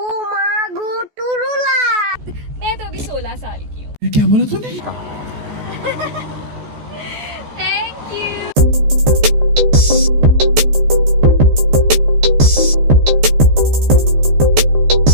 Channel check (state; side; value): late; left; 14 ms